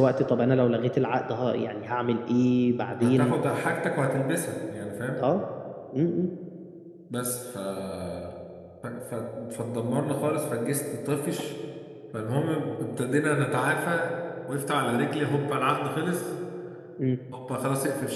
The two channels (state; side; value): identical; both; correlation 1.00